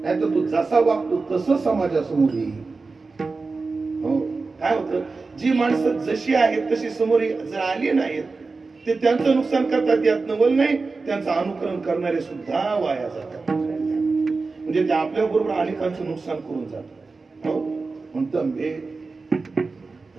नाहीतर तू जसा वागतो तसं समाजासमोर येईल. हो, काय होतं, जी माणसं जशी आहेत तशी समोर जर आली नाहीत, ते त्यांचं नुकसान करतात. यात नवल नाही, त्यांचं अनुकरण करणारे सुद्धा वाया जातात. म्हणजे ते आपल्या बरोबर अनेकांचं नुकसान करून जातात. हो, म्हणतं बे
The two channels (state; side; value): quieter; left; 4.0 dB